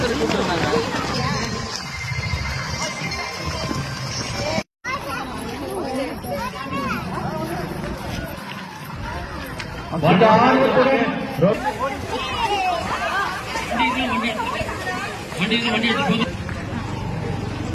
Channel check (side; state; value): both; identical; correlation 1.00